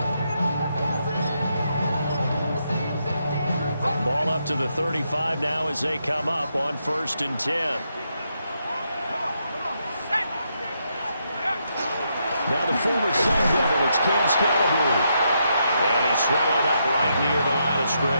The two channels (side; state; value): both; inverted; correlation -0.80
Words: Ball up to the 35 now as they come up on 1st and 10. Now the former Sun Devil, it's Cam Scalaboo. And he's swallowed up right near the line of